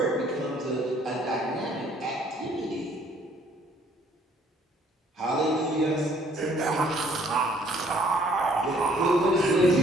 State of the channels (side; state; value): both; normal; correlation 0.61